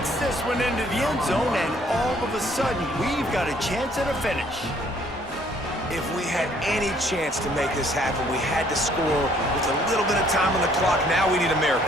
this one into the end zone, and all of a sudden, we've got a chance at a finish. If we had any chance to make this happen, we had to score with a little bit of time on the clock. Now we need a miracle.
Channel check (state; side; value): normal; both; correlation 0.62